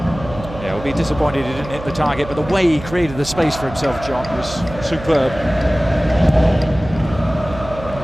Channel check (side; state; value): right; noise; hum, 13 dB below the sound